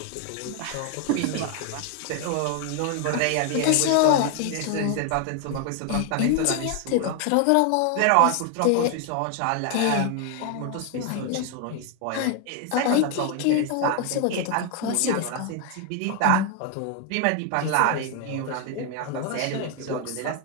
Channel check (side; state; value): both; different; correlation 0.00